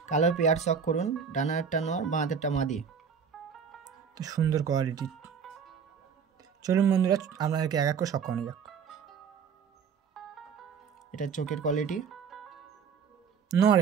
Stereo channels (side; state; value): left; quieter; 6.6 dB